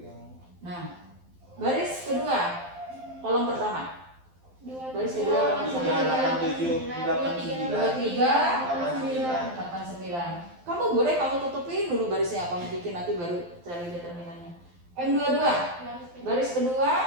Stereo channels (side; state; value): left; late; 12 ms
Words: yang Nah, baris kedua, kolom pertama. Baris kedua, 3, 8, 7, 8, 9. 23, 89. Kamu boleh kamu tutupin dulu barisnya, kamu bikin nanti baru cari determinannya. M22, baris kedua,